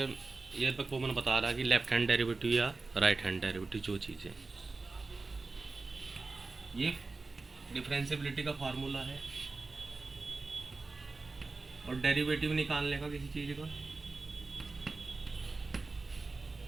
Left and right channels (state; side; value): quieter; left; 3.7 dB